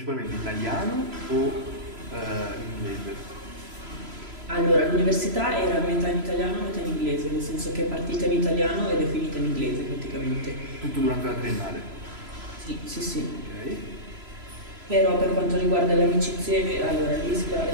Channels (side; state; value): left; late; 3.0 ms